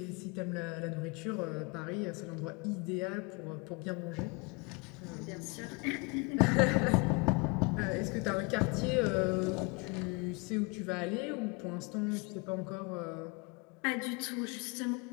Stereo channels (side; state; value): right; quieter; 29.8 dB